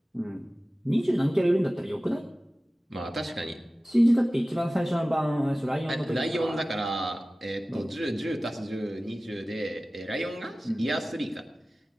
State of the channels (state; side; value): normal; both; correlation 0.97